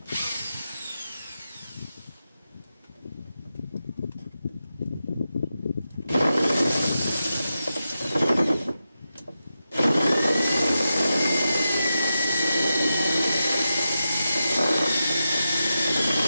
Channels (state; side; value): inverted; both; correlation -0.90